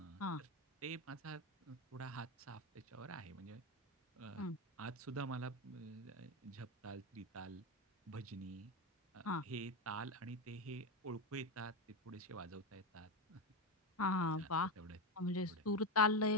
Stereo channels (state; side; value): normal; both; correlation 0.13